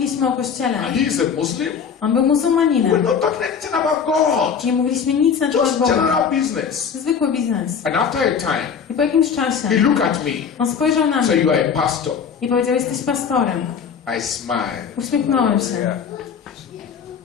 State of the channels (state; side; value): quieter; right; 6.8 dB